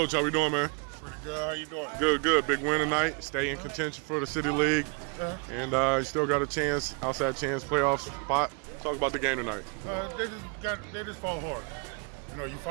how we doing, man? Pretty good. How you doing? Good, good. Big win tonight. Stay in contention for the City League. And you still got a chance, outside chance, playoff spot. Talk about the game tonight. They just fought hard. You know, you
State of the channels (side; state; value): left; quieter; 34.8 dB